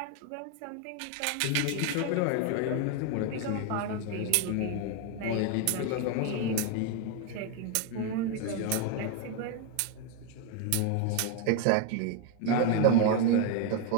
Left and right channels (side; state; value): both; different; correlation 0.01